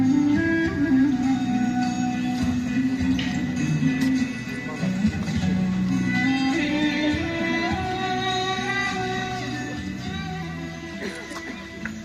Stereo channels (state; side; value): identical; both; correlation 1.00